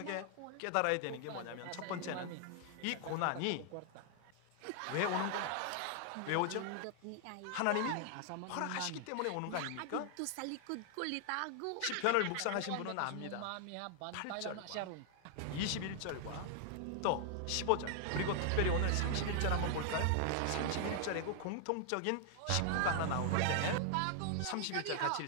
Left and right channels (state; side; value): different; both; correlation 0.00